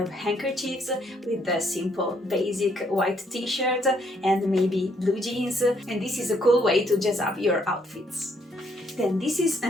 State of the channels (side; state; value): both; normal; correlation 0.70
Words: handkerchiefs with a simple basic white t-shirt and maybe blue jeans, and this is a cool way to jazz up your outfits. Then this is